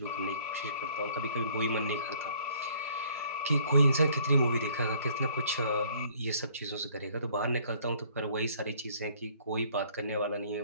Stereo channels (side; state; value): both; inverted; correlation -0.59